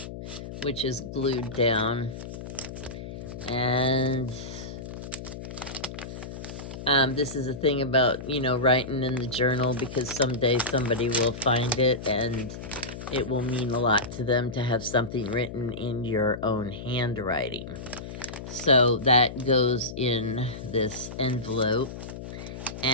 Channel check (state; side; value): noise; left; hum, 10 dB below the sound